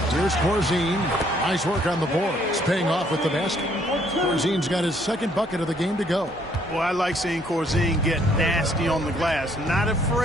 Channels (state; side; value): normal; both; correlation 0.66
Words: Here's Corzine. Nice work on the board. It's paying off with the basket. Corzine's got his second bucket of the game to go. Well, I like seeing Corzine get nasty on the glass. Not